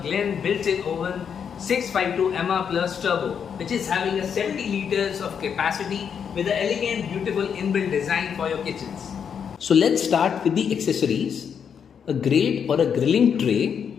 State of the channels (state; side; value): quieter; right; 7.4 dB